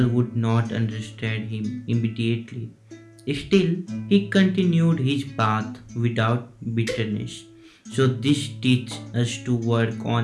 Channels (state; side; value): identical; both; correlation 1.00